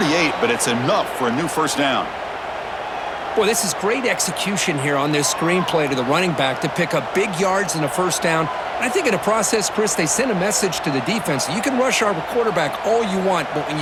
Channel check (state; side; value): identical; both; correlation 1.00